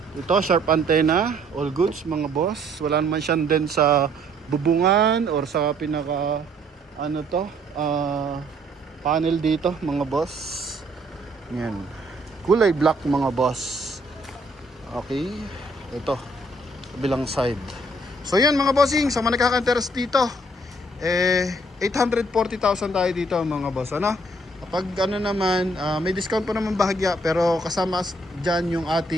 Ito, sharp antenna. All goods mga boss. Wala naman siyang din sa bubungan or sa pinaka panel dito mga boss. Yan. Kulay black mga boss. Okay. Ito. Bilang side. So yan mga bossing. Sa mga nakaka-interest dito. 840,000 tayo dito mga boss. Kapag naman, may discount pa naman bahagya. Pero kasama dyan yung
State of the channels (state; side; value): normal; both; correlation 0.64